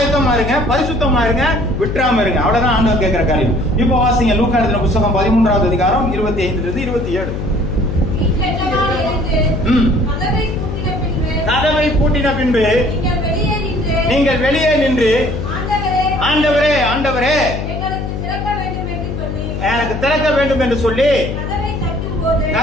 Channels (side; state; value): left; noise; hum, 4 dB below the sound